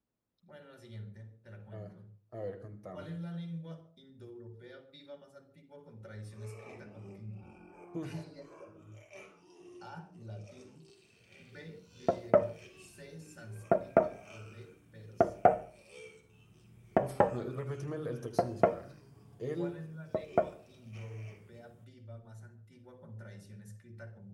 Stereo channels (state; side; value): identical; both; correlation 1.00